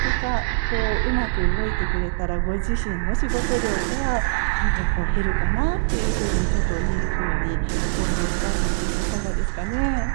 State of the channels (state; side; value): silent; left; 63 dB below the other